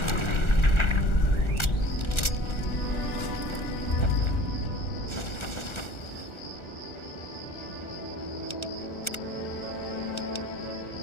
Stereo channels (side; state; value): right; late; 1.4 ms